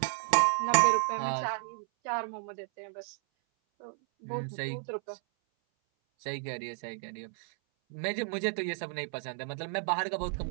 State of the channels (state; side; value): silent; left; 56 dB below the other